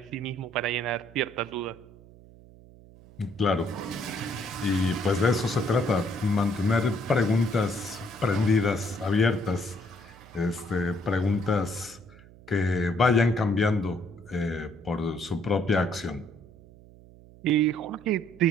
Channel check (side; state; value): right; noise; hum, 22 dB below the sound